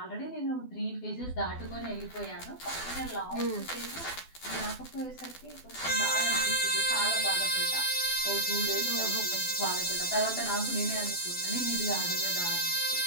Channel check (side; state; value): right; late; 12 ms